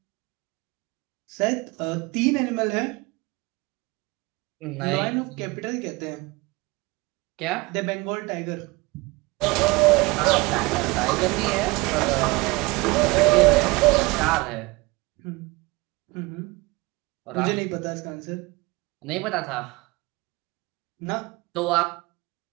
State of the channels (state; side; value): quieter; left; 24.0 dB